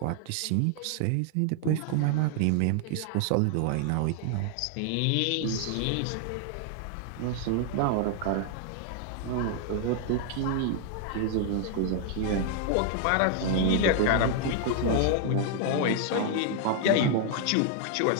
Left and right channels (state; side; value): different; both; correlation 0.00